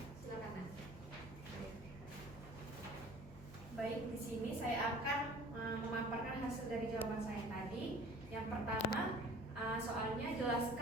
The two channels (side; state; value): both; normal; correlation 0.47